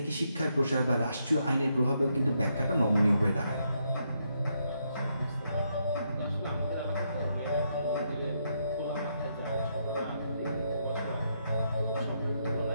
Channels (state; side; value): inverted; both; correlation -0.78